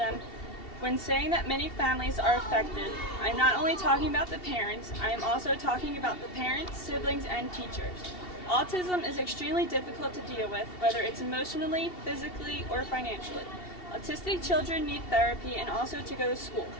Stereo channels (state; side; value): late; right; 2.7 ms